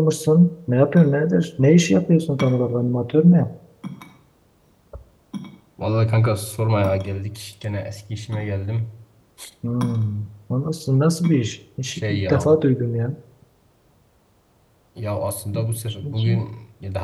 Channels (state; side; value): identical; both; correlation 1.00